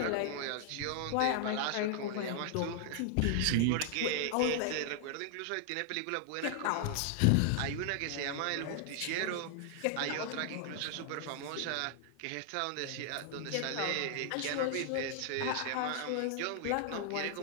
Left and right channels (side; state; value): both; different; correlation 0.00